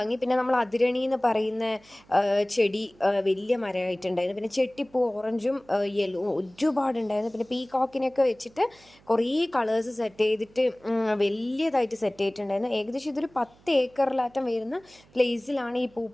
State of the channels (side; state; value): right; noise; hum, 28 dB below the sound